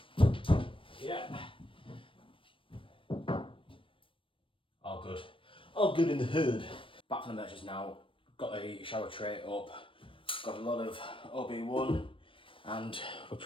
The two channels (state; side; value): late; right; 0.25 ms